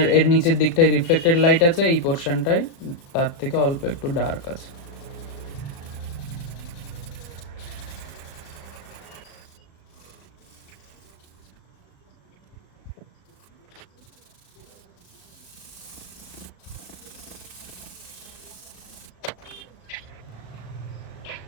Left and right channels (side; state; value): right; late; 36 ms